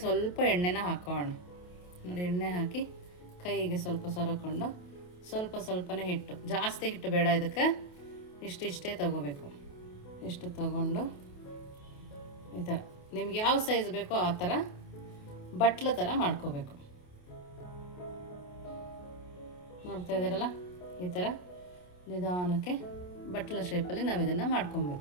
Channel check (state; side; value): late; right; 28 ms